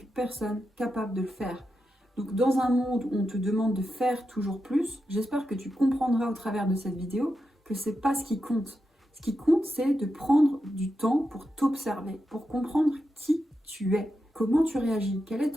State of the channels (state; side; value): normal; both; correlation 0.88